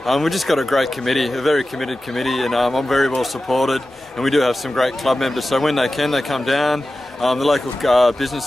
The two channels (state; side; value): normal; both; correlation 0.94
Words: We've just got a great committee, a very committed committee, and I'm very well supported, and we do have some great club members, so when they can, they come down. The local